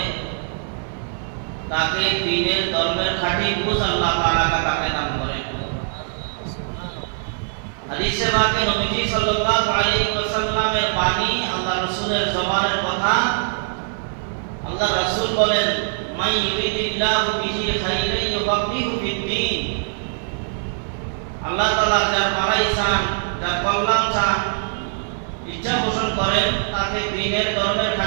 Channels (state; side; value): silent; left; 57 dB below the other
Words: তাকে দ্বীনের ধর্মের খাঁটি বুঝ আল্লাহ তাআলা তাকে দান করেন। হাদিসে পাকে নবীজি সাল্লাল্লাহু আলাইহি ওয়াসাল্লামের বাণী, আল্লাহ রাসূলের জবানের কথা। আল্লাহ রাসূল বলেন, মাই ইউরিদিল্লাহু বিহি খাইরান ইউফাক্কিহু ফিদ্দীন। আল্লাহ তাআলা যার ভালাই চান, যার কল্যাণ চান, ইচ্ছা পোষণ করেন, তাকে দ্বীনের ধর্মের